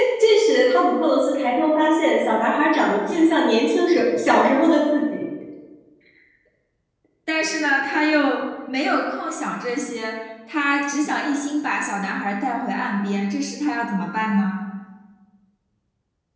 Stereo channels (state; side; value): identical; both; correlation 1.00